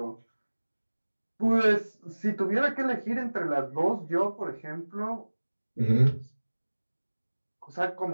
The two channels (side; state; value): both; inverted; correlation -1.00